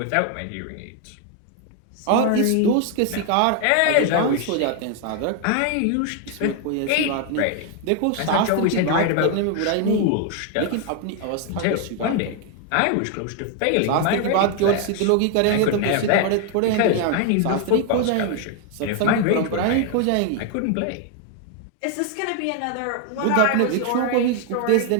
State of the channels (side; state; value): both; different; correlation 0.01